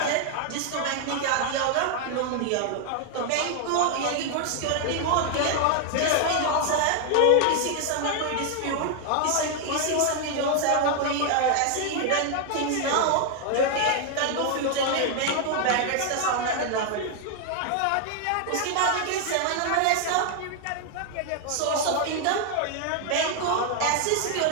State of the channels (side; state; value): both; different; correlation 0.00